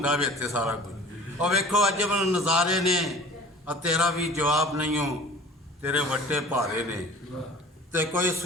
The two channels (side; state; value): both; normal; correlation 0.44